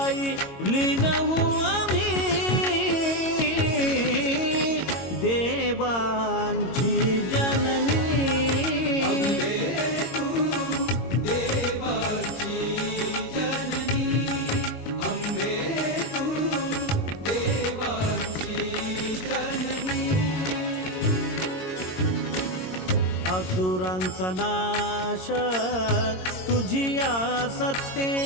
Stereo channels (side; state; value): right; late; 22 ms